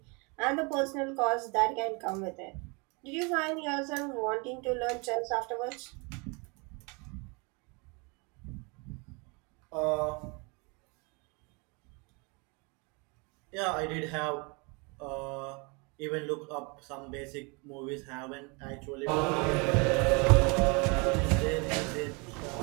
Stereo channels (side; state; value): left; quieter; 30.9 dB